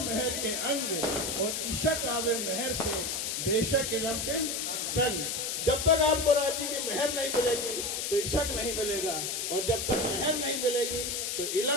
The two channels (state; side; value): noise; left; hiss, 1 dB below the sound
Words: के अंग और इशक आवे मेहर से बेशक इलम के संग। जब तक आपको राजी की मेहर नहीं मिलेगी तो इशक नहीं मिलेगा और जब तक मेहर नहीं मिलेगी तो